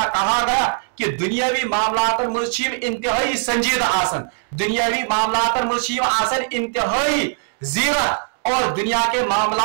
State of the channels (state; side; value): silent; left; 63 dB below the other